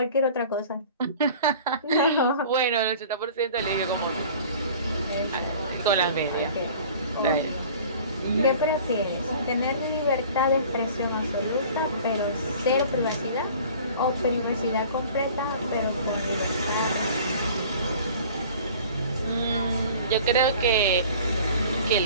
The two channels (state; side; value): inverted; both; correlation -0.45